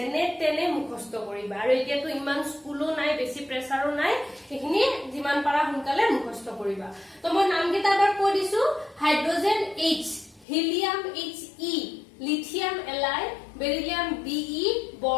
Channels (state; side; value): drops out; right; at 10.5 s